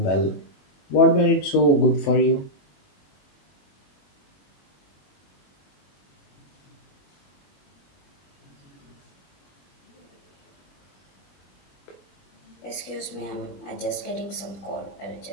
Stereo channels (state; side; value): late; right; 21 ms